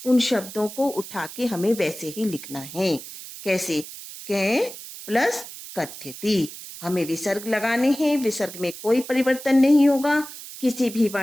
उन शब्दों को उठा के हमें वैसे ही लिखना है। कैसे? के प्लस कथ्यति, हमें विसर्ग लगाने हैं, विसर्ग में कोई परिवर्तन नहीं होगा, किसी भी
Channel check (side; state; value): right; noise; hiss, 13 dB below the sound